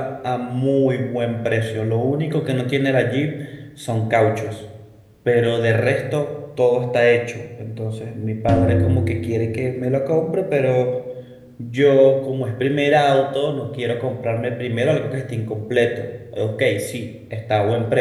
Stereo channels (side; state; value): both; identical; correlation 1.00